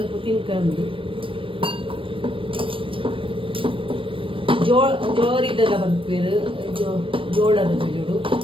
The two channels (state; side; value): late; left; 0.25 ms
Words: ತಿನ್ಕಂದು ಜೋರಿದ್ದೆಲ್ಲ ಮನ್ಪೇರು ಜೋಳದ ಜೋಡು